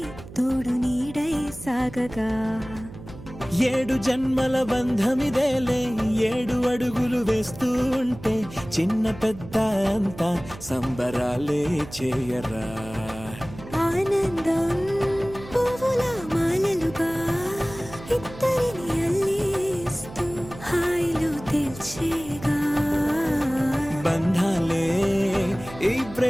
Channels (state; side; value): noise; right; hum, 15 dB below the sound